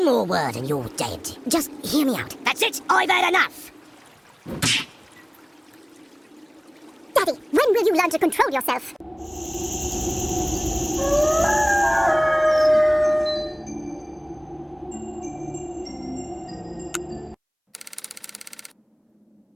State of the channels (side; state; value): both; identical; correlation 1.00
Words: more word and you're dead. Just hear me out. That's it, I've had enough! you learn to control yourself?